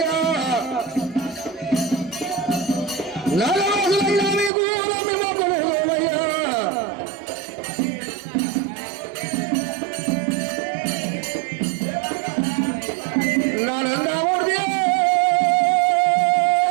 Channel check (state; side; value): drops out; left; at 4.5 s